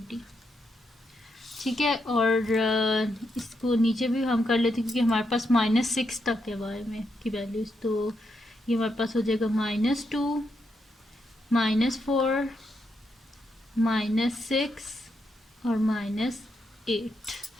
ठीक है। और इसको नीचे भी हम कर लेते हैं क्योंकि हमारे पास -6 तक है वाई में की वैल्यूज, तो ये हमारे पास हो जाएगा -2, -4, -6 और -8।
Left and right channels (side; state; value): both; normal; correlation 0.81